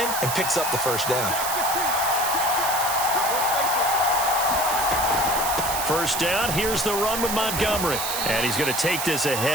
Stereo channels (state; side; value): noise; right; hiss, 3 dB below the sound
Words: and picks up the first down. First down, here's the run with Montgomery. And he's going to take this